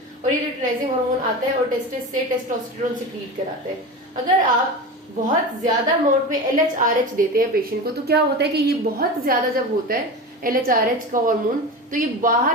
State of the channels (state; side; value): normal; both; correlation 0.26